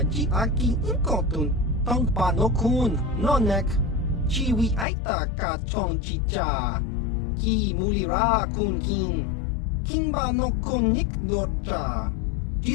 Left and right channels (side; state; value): right; drops out; at 4.9 s